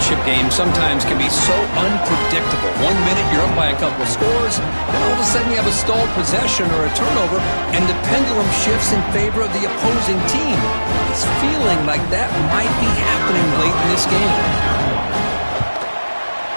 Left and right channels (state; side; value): inverted; both; correlation -1.00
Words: games sometimes can be so unpredictable. 1 minute you're up by a couple of scores, then all of a sudden you have a stalled possession or a turnover, and the pendulum shifts in favor of the opposing team. It's feeling like that might be happening late in this game.